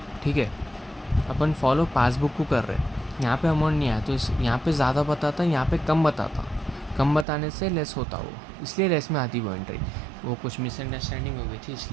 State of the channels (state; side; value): drops out; left; at 7.2 s